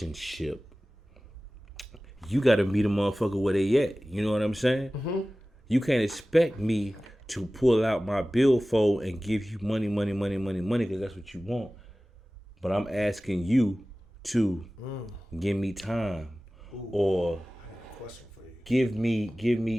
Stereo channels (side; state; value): both; normal; correlation 0.97